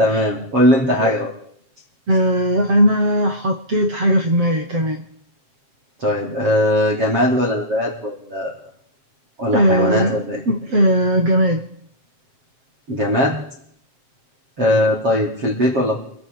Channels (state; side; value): late; left; 7.5 ms